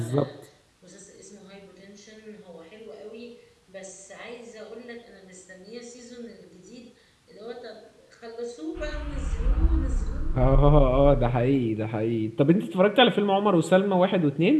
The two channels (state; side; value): identical; both; correlation 1.00